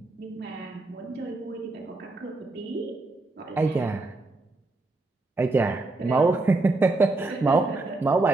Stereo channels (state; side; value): quieter; left; 3.2 dB